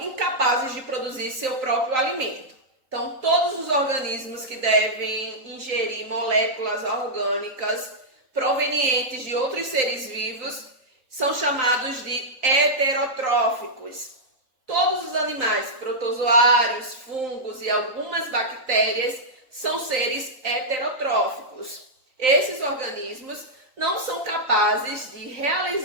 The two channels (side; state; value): left; late; 3.9 ms